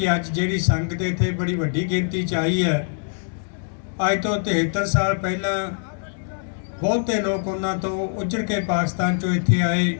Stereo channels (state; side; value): silent; right; 63 dB below the other